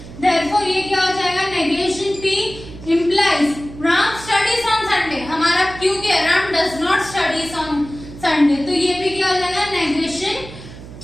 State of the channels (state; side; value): noise; right; hum, 15 dB below the sound